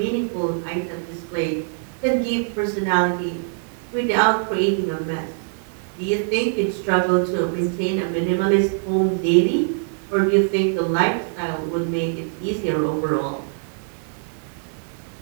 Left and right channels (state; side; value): silent; left; 64 dB below the other